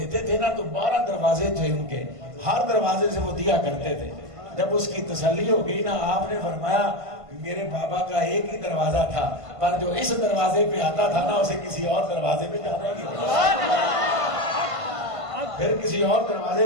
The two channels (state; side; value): late; left; 1.5 ms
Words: تھے نا تو 12 دروازے تھے ان کے، ہر دروازے سے وہ دیا کرتے تھے. جب اس کی تسلی ہو گئی نا، آپ نے فرمایا میرے بابا کا ایک ہی دروازہ تھا، پر جو اس دروازے پہ آتا تھا نا اسے کسی اور دروازے پہ جانا ہی نہیں، پھر کسی اور